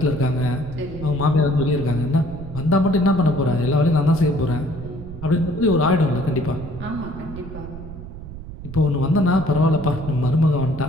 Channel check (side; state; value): right; noise; rumble, 12 dB below the sound